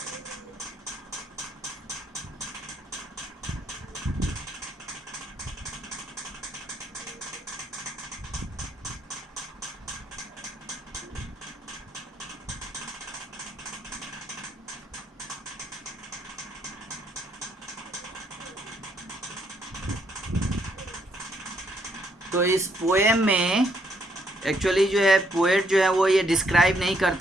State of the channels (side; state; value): both; normal; correlation 0.72